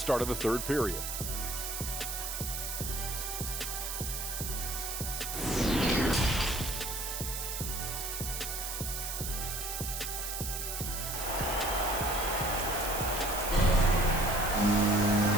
of the third period.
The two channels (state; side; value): noise; right; hiss, 4 dB below the sound